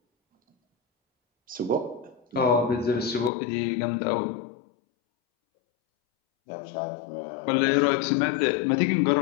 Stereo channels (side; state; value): right; drops out; at 3.3 s